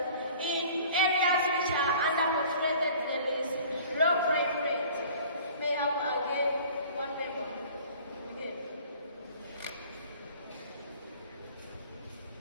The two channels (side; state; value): both; inverted; correlation -0.48